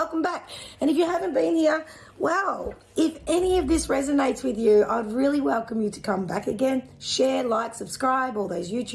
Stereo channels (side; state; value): both; identical; correlation 1.00